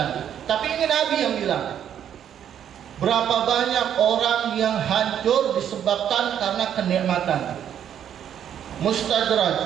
Tapi ini Nabi yang bilang, berapa banyak orang yang hancur disebabkan karena kenikmatan.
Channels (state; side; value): quieter; left; 9.5 dB